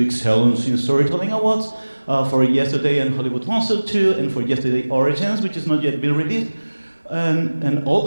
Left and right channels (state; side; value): inverted; both; correlation -1.00